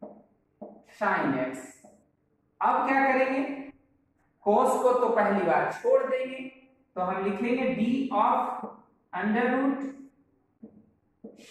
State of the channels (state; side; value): identical; both; correlation 1.00